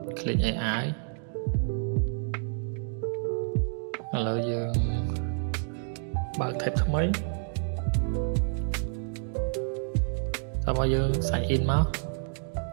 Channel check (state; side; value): silent; left; 56 dB below the other